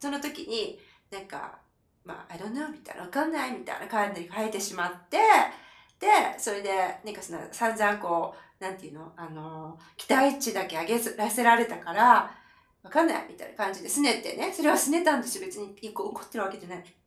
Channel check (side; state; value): both; identical; correlation 1.00